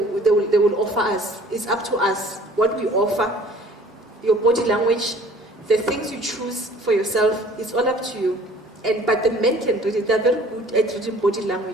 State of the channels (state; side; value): normal; both; correlation 0.51